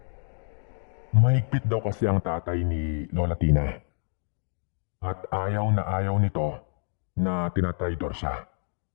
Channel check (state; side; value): silent; right; digital silence